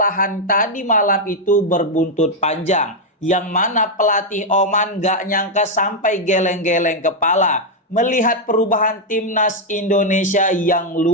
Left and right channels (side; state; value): both; normal; correlation 0.00